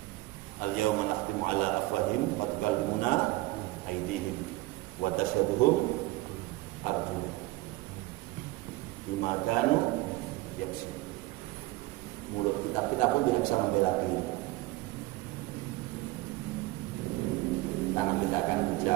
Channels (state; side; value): quieter; left; 19.6 dB